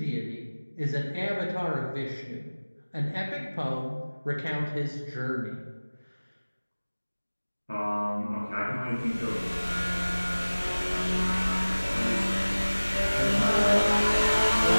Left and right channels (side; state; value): both; inverted; correlation -1.00